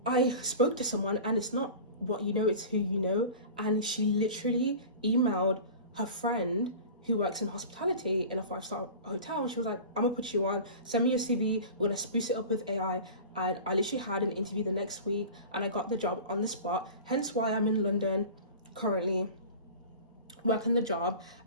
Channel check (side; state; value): both; inverted; correlation -0.36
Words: I spoke to someone, and it's not what you know, it's who you know. And she literally emailed her friend who works in hospitality in a 5-star hotel. And she was like, I'm gonna put you on, send me your CV, we're gonna spruce it up with AI. And I literally had an interview the next week and I got the job on the spot. Hence why I'm in London currently working the job.